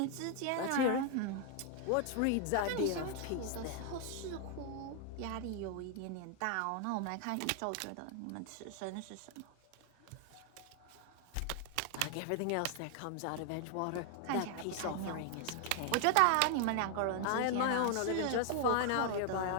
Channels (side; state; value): both; different; correlation 0.00